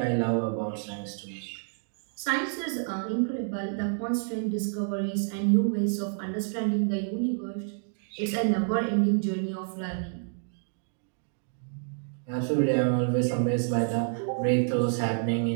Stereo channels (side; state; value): left; silent; 58 dB below the other